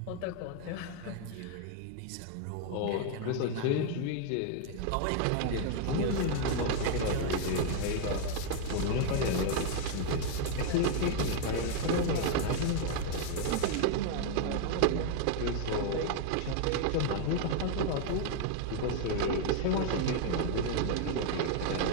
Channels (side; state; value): both; different; correlation 0.00